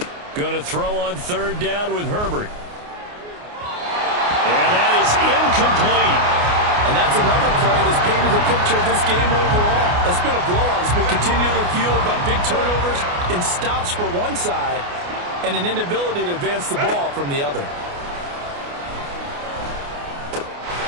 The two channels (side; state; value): left; late; 29 ms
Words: Going to throw on third down with Herbert. And that is incomplete. And that's another play that's painted the picture of this game overall. It's been a blowout. It's been continually fueled by big turnovers and stops for one side and an inability to advance the ball from the other.